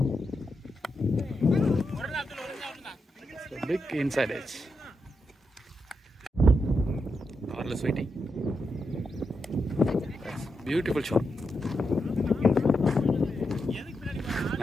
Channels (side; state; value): both; normal; correlation 0.85